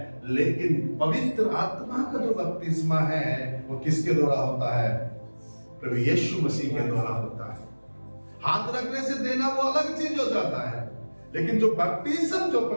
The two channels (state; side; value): inverted; both; correlation -1.00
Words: लेकिन पवित्र आत्मा का जो बपतिस्मा है वो किसके द्वारा होता है? प्रभु यीशु मसीह के द्वारा होता है। हाथ रखने से देना वो अलग चीज हो जाता है, लेकिन जो बपतिस्मा जो